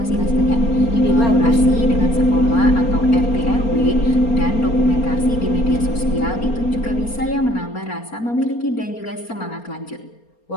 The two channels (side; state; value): right; late; 4.3 ms